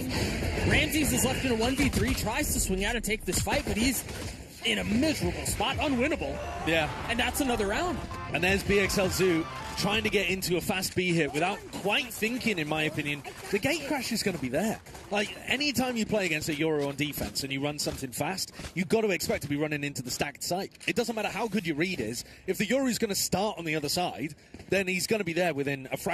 Ramses is left in a 1v3, tries to swing out and take this fight, but he's in a miserable spot, unwinnable. Yeah. And that's another round. And there's BXL Zoo trying to get into a fast B hit without quite thinking, in my opinion. The gate crash is going to be there. Anytime you play against a Euro on defense and you run something fast, you've got to expect to be running into the stacked site. It doesn't matter how good your read is. If the Euro is going to start on the other side, then he's going to be there within a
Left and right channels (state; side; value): identical; both; correlation 1.00